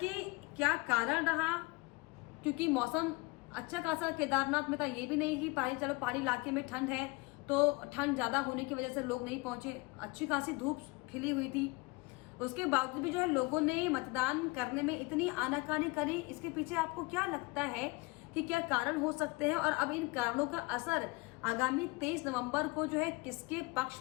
क्या कारण रहा? क्योंकि मौसम अच्छा खासा केदारनाथ में था, ये भी नहीं कि पहाड़ी इलाके में ठंड है तो ठंड ज्यादा होने की वजह से लोग नहीं पहुंचे, अच्छी खासी धूप खिली हुई थी। उसके बावजूद भी जो है लोगों ने मतदान करने में इतनी आनाकानी करी, इसके पीछे आपको क्या लगता है कि क्या कारण हो सकते हैं? और अब इन कारणों का असर आगामी 23 नवंबर को जो है किसके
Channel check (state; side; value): quieter; right; 25.4 dB